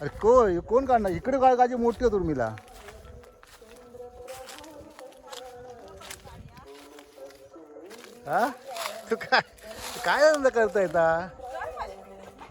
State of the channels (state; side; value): identical; both; correlation 1.00